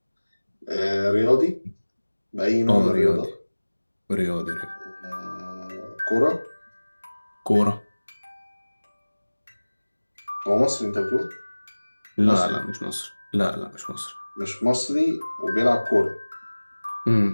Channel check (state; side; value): inverted; both; correlation -1.00